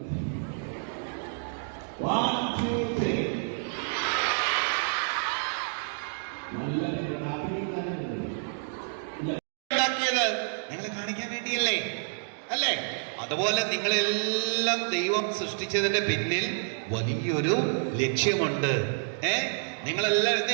നിങ്ങളെ കാണിക്കാൻ വേണ്ടിയല്ലേ അല്ലേ? അതുപോലെ നിങ്ങളെല്ലാം ദൈവം സൃഷ്ടിച്ചതിന്റെ പിന്നിൽ വലിയൊരു ലക്ഷ്യമുണ്ട്. നിങ്ങളെല്ലാം എന്ത്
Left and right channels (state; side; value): silent; left; digital silence